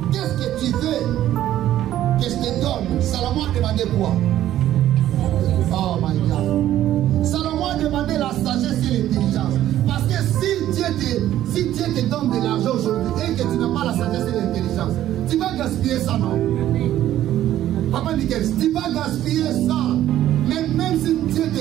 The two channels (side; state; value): left; quieter; 12.7 dB